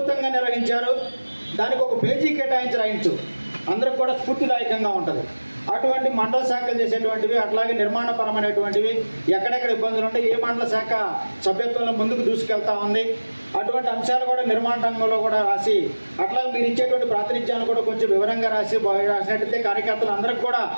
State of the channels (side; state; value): both; inverted; correlation -1.00